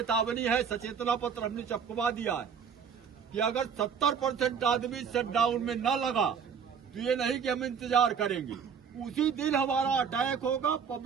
है, सचेतना पत्र हमने छपवा दिया है कि अगर 70% आदमी शटडाउन में न लगा तो ये नहीं कि हम इंतजार करेंगे, उसी दिन हमारा अटैक होगा,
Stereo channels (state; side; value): quieter; left; 6.9 dB